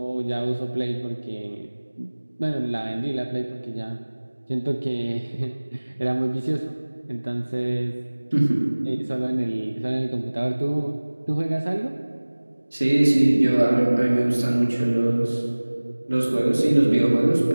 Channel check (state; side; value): inverted; both; correlation -1.00